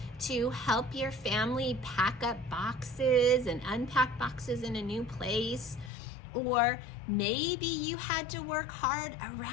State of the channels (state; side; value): drops out; right; at 5.9 s